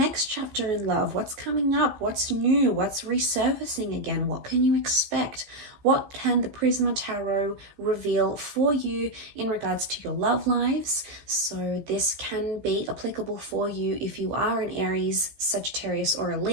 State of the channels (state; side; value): late; left; 15 ms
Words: chapter in love. What's coming up? What's new? What's resurfacing again? What can you expect? What can the Prisma Tarot reveal for you in regards to your love lives? So this can be applicable for you if you are an Aries, Sagittarius, or a